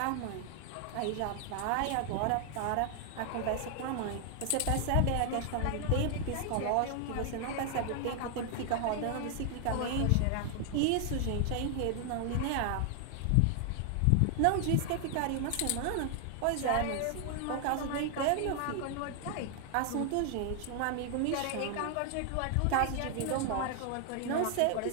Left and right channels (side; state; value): both; different; correlation 0.00